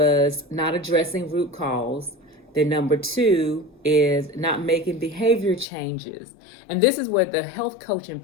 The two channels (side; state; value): right; drops out; at 5.7 s